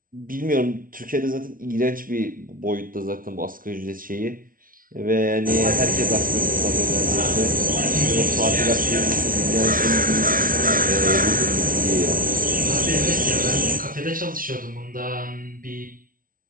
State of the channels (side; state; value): left; late; 0.41 ms